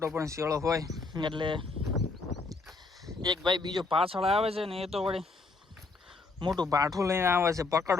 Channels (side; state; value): right; quieter; 3.8 dB